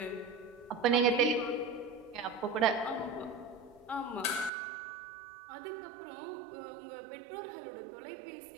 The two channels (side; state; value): left; drops out; at 4.5 s